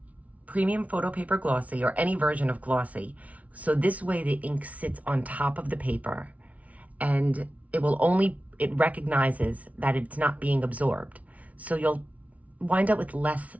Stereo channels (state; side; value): late; left; 0.068 ms